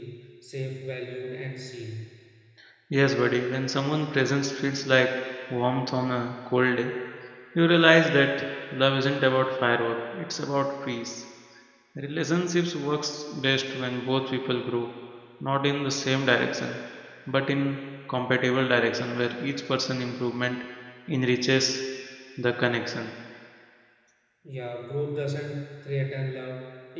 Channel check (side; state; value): both; identical; correlation 1.00